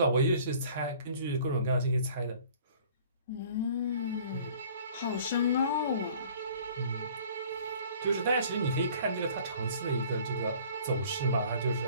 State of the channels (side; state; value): both; inverted; correlation -0.51